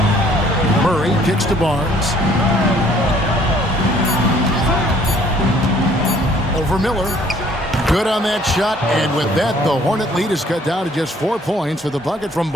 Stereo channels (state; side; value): normal; both; correlation 0.59